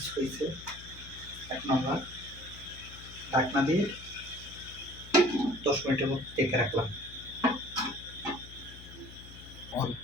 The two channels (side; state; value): left; noise; hum, 16 dB below the sound